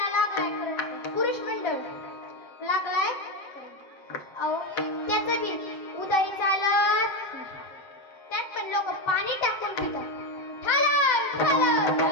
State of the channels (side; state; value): right; late; 7.8 ms